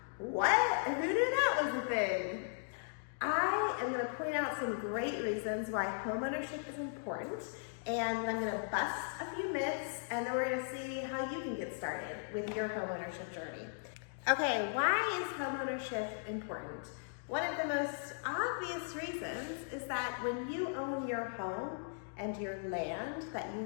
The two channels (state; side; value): silent; right; digital silence